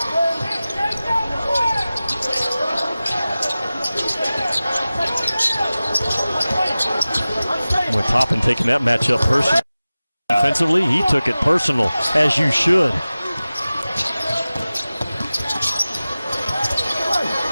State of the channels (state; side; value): inverted; both; correlation -0.97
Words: With Toppin taking that matchup personally. Offensively, he took it personal, as you should.